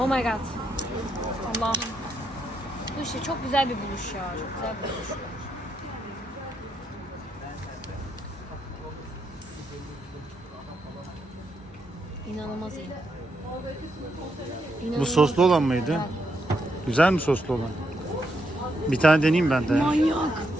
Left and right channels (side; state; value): both; normal; correlation 0.80